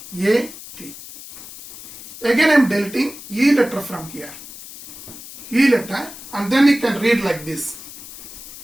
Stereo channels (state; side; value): noise; left; hiss, 15 dB below the sound